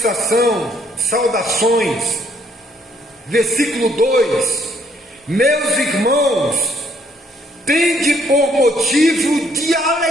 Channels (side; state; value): both; normal; correlation 0.66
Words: saudações. Versículo 2: meus irmãos, tende por motivo de